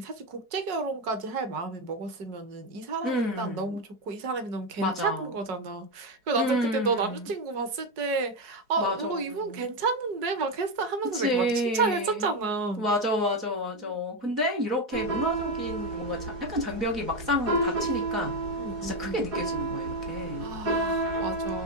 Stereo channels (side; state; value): left; late; 4.7 ms